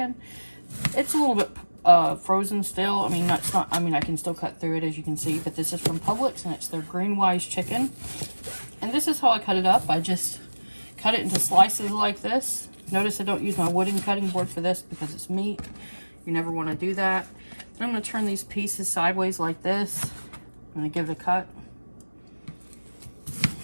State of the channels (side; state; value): both; inverted; correlation -1.00